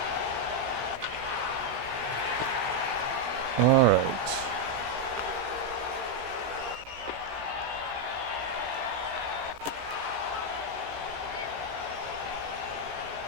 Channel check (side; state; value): left; late; 16 ms